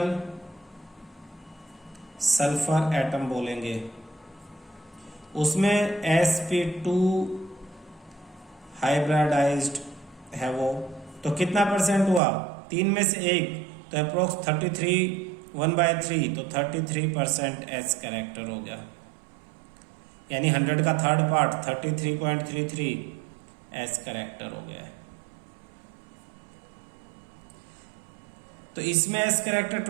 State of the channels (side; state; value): left; drops out; at 12.2 s